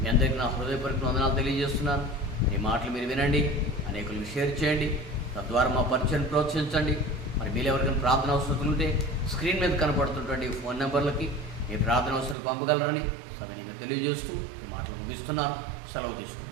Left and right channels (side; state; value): left; drops out; at 12.4 s